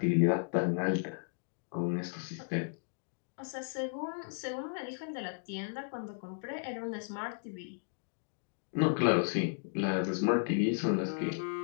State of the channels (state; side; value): silent; right; digital silence